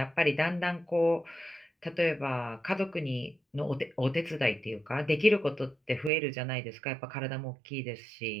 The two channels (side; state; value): left; drops out; at 6.1 s